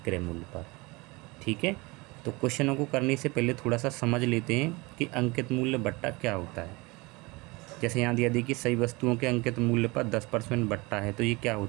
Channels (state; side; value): quieter; left; 24.5 dB